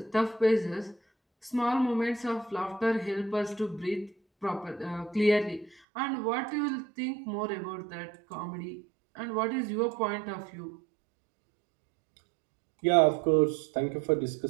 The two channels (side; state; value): left; drops out; at 5.8 s